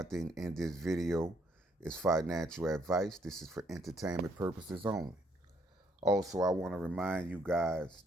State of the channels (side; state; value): both; normal; correlation 0.69